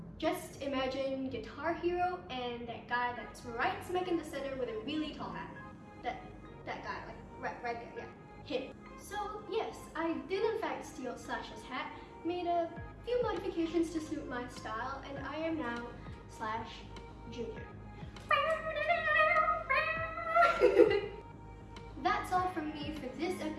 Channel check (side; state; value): both; identical; correlation 1.00